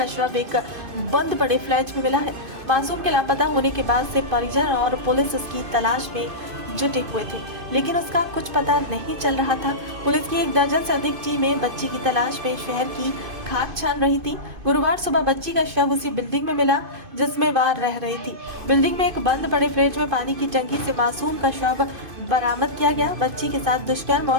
शव एक बंद पड़े फ्लैट में मिला है। मासूम के लापता होने के बाद से परिजन और पुलिस उसकी तलाश में जुटे हुए थे, लेकिन उसका कुछ पता नहीं चल रहा था। पुलिस की 1 दर्जन से अधिक टीमें बच्ची की तलाश में शहर की खाक छान रही थी। गुरुवार सुबह बच्ची का शव उसी बिल्डिंग में मिला जिसमें वह रह रही थी। बिल्डिंग में एक बंद पड़े फ्लैट में पानी की टंकी से मासूम का शव बरामद किया गया। बच्ची के साथ दुष्कर्म और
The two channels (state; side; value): late; left; 2.5 ms